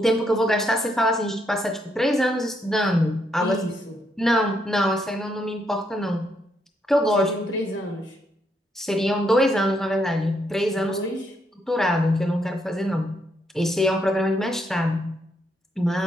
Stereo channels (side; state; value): both; normal; correlation 0.76